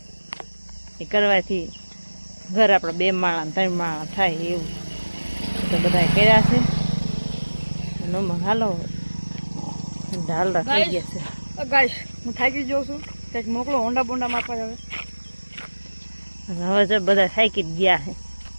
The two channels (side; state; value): both; inverted; correlation -1.00